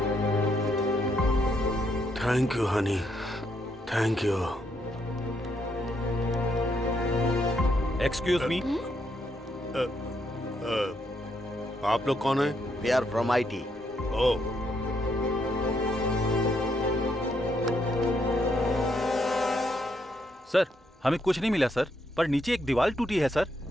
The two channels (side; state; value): both; normal; correlation 0.76